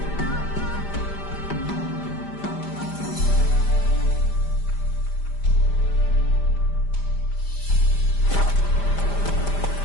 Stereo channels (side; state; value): right; late; 5.0 ms